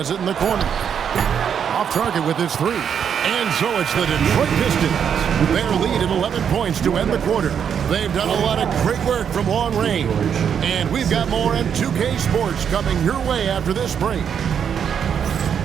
it in the corner. Off target with his three. And so it's the Detroit Pistons. Their lead at 11 points to end the quarter. They've done a lot of great work from long range. And we've got more M2K Sports coming your way after this break.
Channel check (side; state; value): left; quieter; 7.9 dB